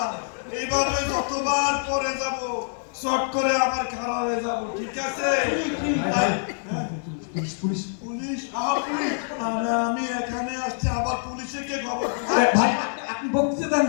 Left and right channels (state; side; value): silent; right; 61 dB below the other